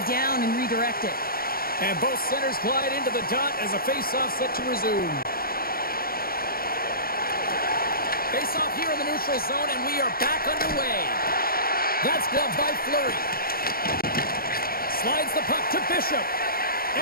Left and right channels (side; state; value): right; late; 0.43 ms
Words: down and redirect it. And both centers glide into the dot as a face-off set to resume. Face-off here in the neutral zone, and we are back underway. That's gloved by Fleury. Slides the puck to Bishop.